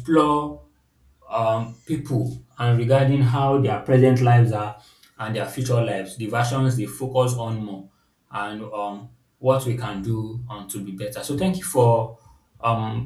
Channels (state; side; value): identical; both; correlation 1.00